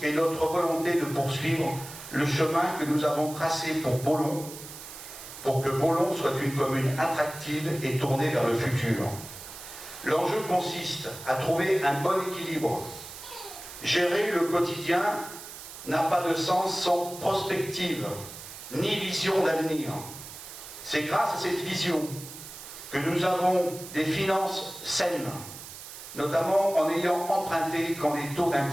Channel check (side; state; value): right; noise; hiss, 13 dB below the sound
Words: et notre volonté de poursuivre le chemin que nous avons tracé pour Beaulon, pour que Beaulon soit une commune attractive et tournée vers le futur. L'enjeu consiste à trouver un bon équilibre. Gérer le quotidien n'a pas de sens sans prospective, ni vision d'avenir. C'est grâce à cette vision que nous avons des finances saines, notamment en ayant emprunté quand les taux